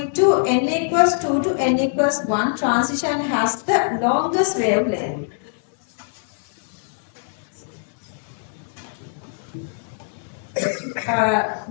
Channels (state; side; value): silent; right; 64 dB below the other